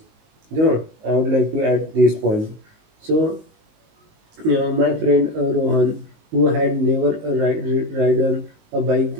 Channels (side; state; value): left; late; 19 ms